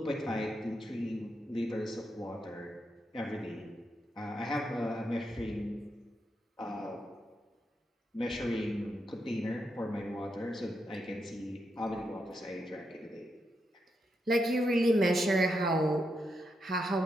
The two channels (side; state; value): both; normal; correlation 0.83